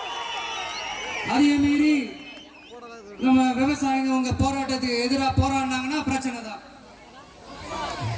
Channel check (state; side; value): identical; both; correlation 1.00